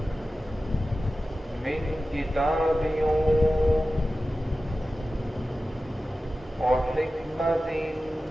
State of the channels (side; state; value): both; normal; correlation 0.94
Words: مِّن كِتَابٍ وَحِكْمَةٍ